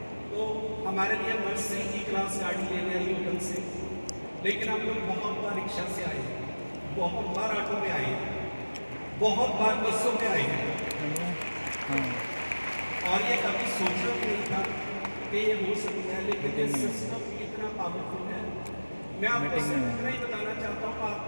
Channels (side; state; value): both; inverted; correlation -1.00